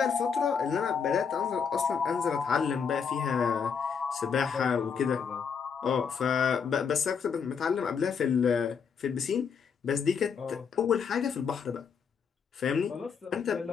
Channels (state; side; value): quieter; right; 6.4 dB